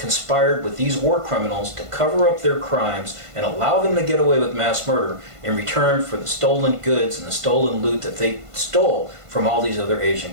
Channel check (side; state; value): left; late; 1.5 ms